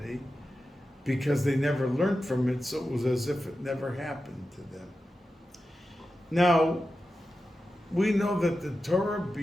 because they never learned from it, so it was as if it never happened to them. Now, we know that the Torah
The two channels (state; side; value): normal; both; correlation 0.92